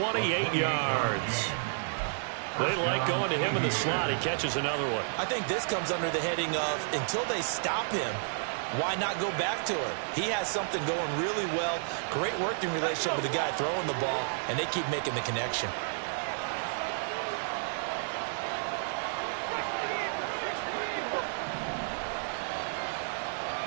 yards. They like going to him in the slot. He catches another one. I think this comes under the heading of until they stop him, why not go back to it? He has something going really well. Great working relationship with the guy throwing the ball, and they keep making the connection.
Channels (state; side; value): silent; left; digital silence